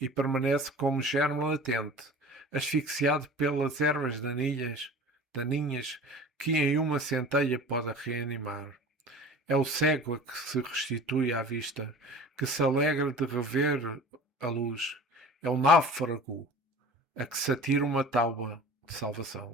permanece como germe latente, asfixiado pelas ervas daninhas que em uma centelha pode reanimar. É o cego a que se restitui à vista, que se alegra de rever a luz. É o náufrago a que se atira uma tábua, de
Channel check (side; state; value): both; normal; correlation 0.40